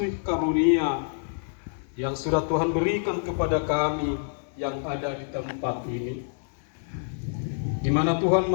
karunia yang sudah Tuhan berikan kepada kami yang ada di tempat ini, di mana Tuhan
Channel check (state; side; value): silent; right; digital silence